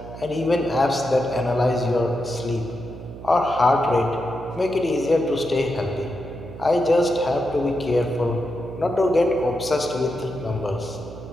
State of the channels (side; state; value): right; noise; hum, 13 dB below the sound